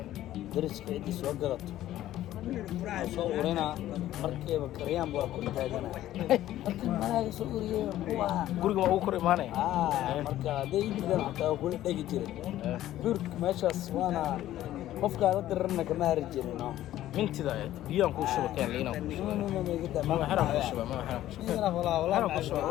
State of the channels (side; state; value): right; quieter; 13.6 dB